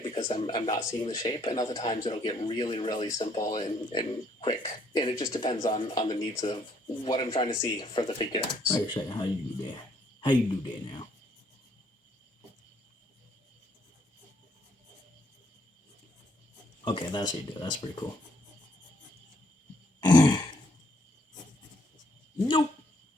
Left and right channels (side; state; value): both; normal; correlation 0.69